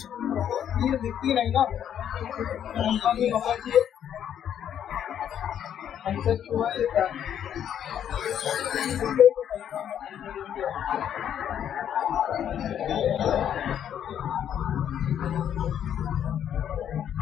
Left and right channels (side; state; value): right; quieter; 9.6 dB